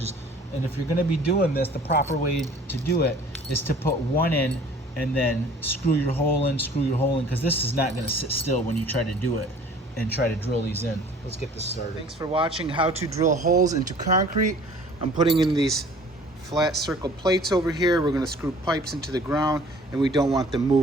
And if you're gonna be doing this, the proper way to do it is to put 1 in and then screw your hole in, because this is not gonna sit still when you try to do it and try to drill these in. Let's get this started. Thanks for watching how to drill holes into concrete. I'm putting in these flat circle plates over here. We're gonna screw pipes into the ground, and we don't want them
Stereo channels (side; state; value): both; normal; correlation 0.50